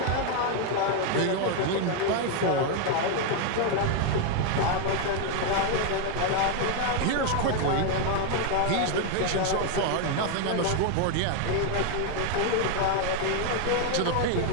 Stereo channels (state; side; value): different; both; correlation 0.01